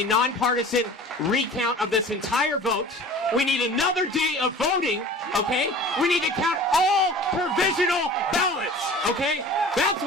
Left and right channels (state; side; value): normal; both; correlation 0.42